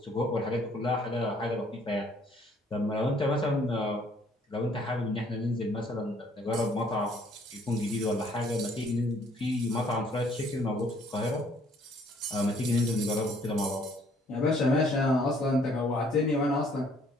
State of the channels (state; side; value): normal; both; correlation 0.62